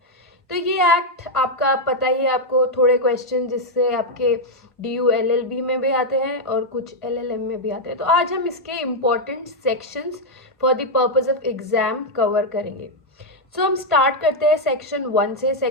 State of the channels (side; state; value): both; normal; correlation -0.01